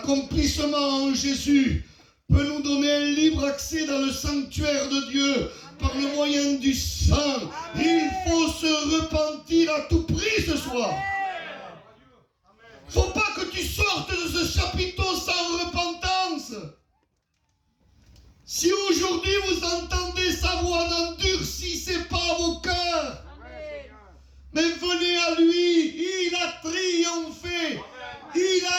en Jésus peut nous donner un libre accès dans le sanctuaire de Dieu par le moyen du sang. Il faut se repentir à tout prix ce soir. Faut pas que tu sortes de ce chapiteau sans repentance. Si aujourd'hui vous entendez sa voix, n'endurcissez pas vos cœurs. Mais venez à lui, il a triomphé. Il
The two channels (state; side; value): identical; both; correlation 1.00